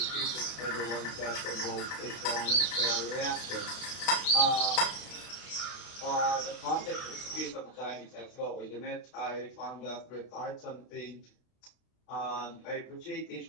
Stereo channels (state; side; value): late; right; 32 ms